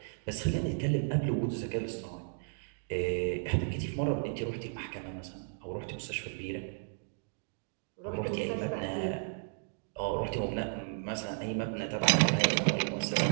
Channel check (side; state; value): left; silent; digital silence